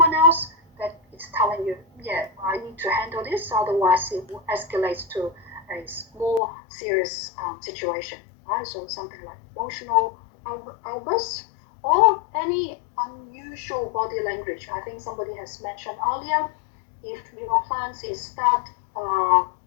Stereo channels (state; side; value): drops out; right; at 6.4 s